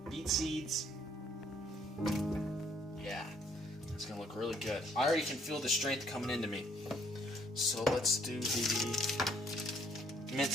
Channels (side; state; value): both; normal; correlation 0.65